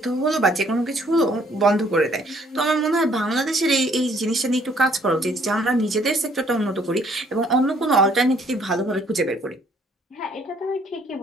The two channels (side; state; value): both; normal; correlation 0.63